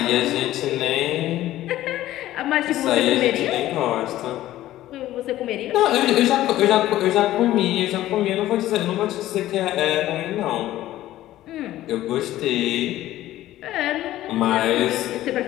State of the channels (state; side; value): quieter; right; 14.5 dB